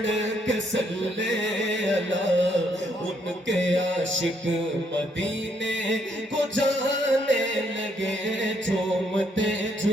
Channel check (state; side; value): normal; both; correlation 0.71